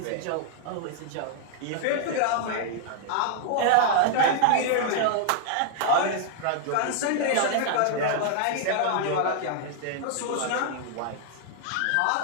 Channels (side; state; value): both; different; correlation -0.01